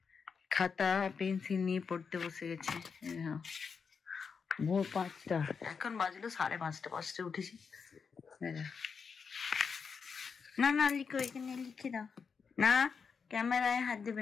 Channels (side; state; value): right; quieter; 5.7 dB